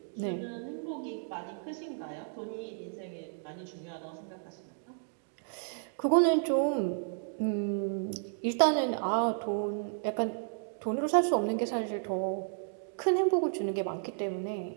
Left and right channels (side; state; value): left; silent; digital silence